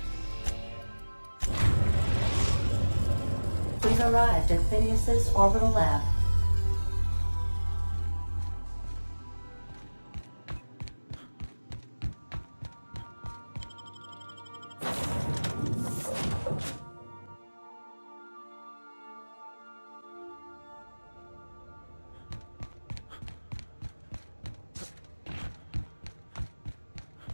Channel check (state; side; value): inverted; both; correlation -1.00